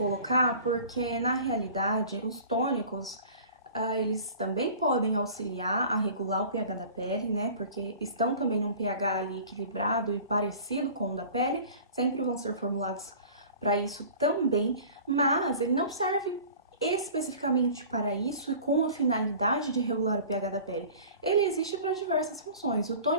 porque, na realidade, os tônicos, eles também podem auxiliar a regular o pH da pele, né? Porque estão também num pH ali equilibrado e parecido com o da pele, sempre vão ser formulados para isso também, mas ele não serve especificamente para isso e com a finalidade de regular o pH da pele. Ele existe para diversas funções. O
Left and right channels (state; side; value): inverted; both; correlation -0.43